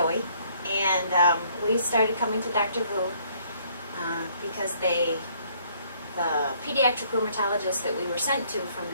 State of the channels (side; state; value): both; inverted; correlation -0.64